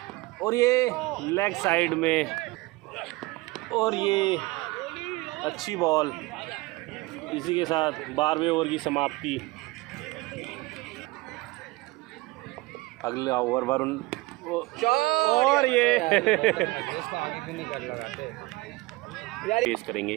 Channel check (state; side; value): quieter; left; 21.7 dB